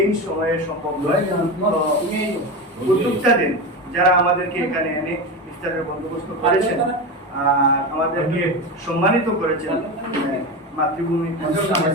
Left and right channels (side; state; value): both; normal; correlation 0.21